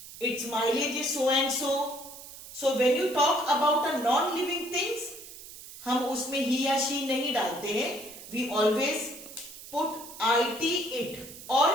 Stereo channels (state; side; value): noise; right; hiss, 15 dB below the sound